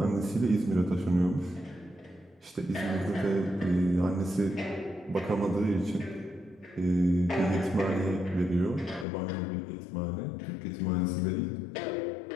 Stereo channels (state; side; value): drops out; right; at 9.1 s